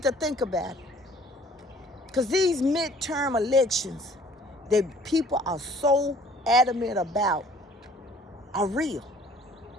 to think about it. Because these midterm elections that people are so adamant about are real.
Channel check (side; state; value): both; normal; correlation 0.55